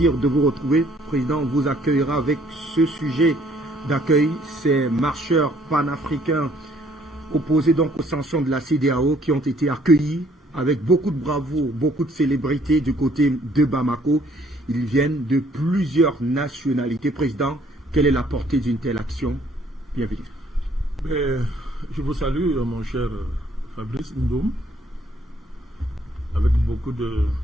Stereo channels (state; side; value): normal; both; correlation 0.63